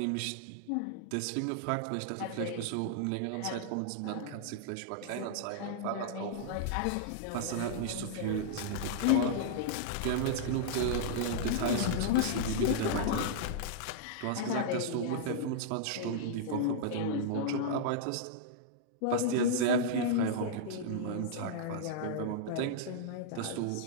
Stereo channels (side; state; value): both; different; correlation -0.02